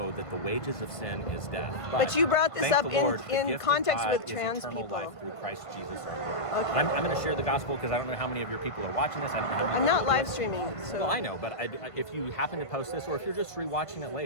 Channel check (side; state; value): right; late; 1.5 ms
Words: that the wages of sin is death. But you brought this thank up the Lord, the in gift of context God with is trans eternal people. life through Christ Jesus our Lord. Okay. I'm going to share the gospel because I don't know how many of your people are watching this. I don't know how many I'm not people are live listening. streaming. So. Well, I know, but if you happen to post this or if you're just rewatching it